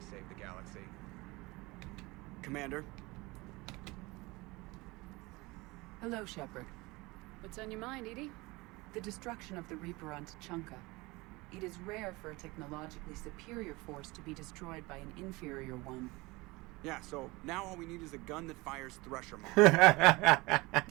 save the galaxy. Commander? Hello, Shepard. What's on your mind, Edie? The destruction of the Reaper on Tuchanka. It is rare for a technologically superior force to be destroyed by an inferior one. Yeah, so now all we need is a gun that fires Thresher Maw.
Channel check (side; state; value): left; quieter; 22.8 dB